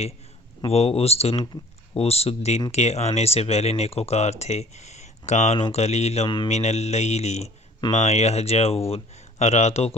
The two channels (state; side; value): normal; both; correlation 0.50